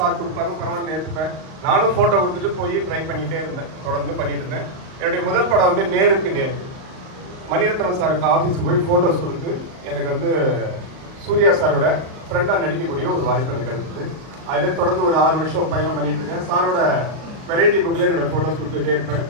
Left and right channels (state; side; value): late; left; 38 ms